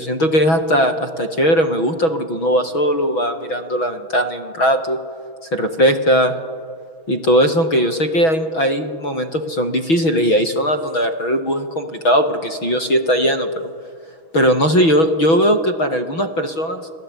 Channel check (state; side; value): late; right; 6.2 ms